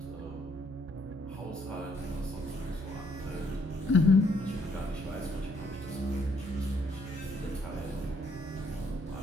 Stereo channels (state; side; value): normal; both; correlation 0.68